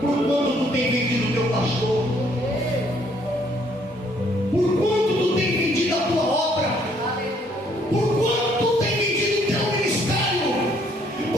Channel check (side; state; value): both; normal; correlation 0.66